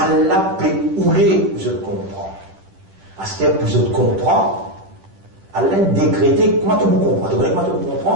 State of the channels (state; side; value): late; left; 10 ms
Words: peut ouler, je comprends. À ce que je comprends, Allah a décrété, comment tu comprends? Tu connais comment tu